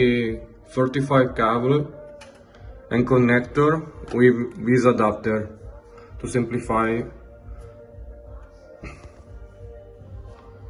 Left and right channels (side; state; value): both; identical; correlation 1.00